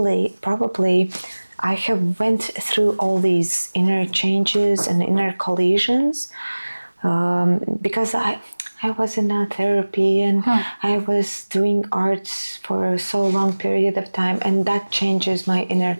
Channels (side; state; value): both; inverted; correlation -1.00